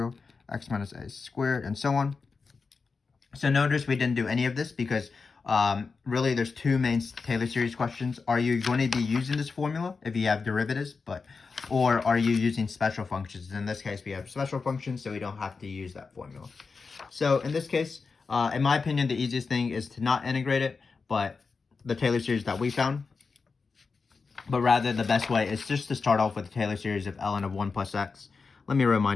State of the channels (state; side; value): quieter; right; 4.7 dB